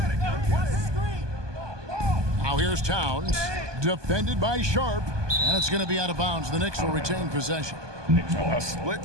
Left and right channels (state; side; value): late; left; 1.2 ms